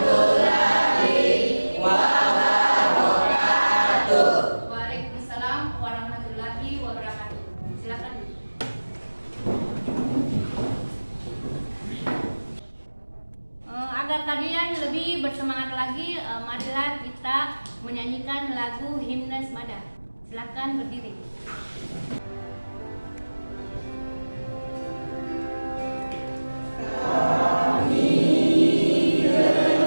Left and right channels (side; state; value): both; inverted; correlation -1.00